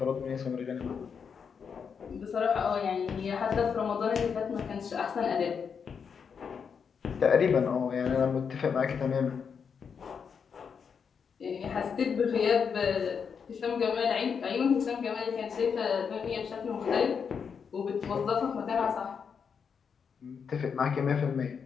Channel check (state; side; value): quieter; right; 6.5 dB